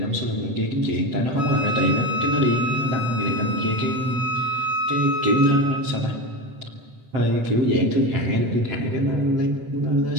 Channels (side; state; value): left; late; 8.0 ms